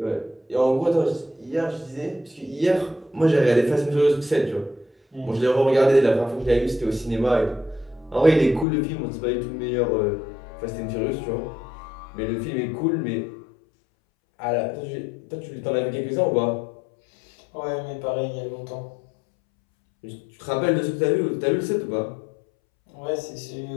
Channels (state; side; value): drops out; right; at 8.7 s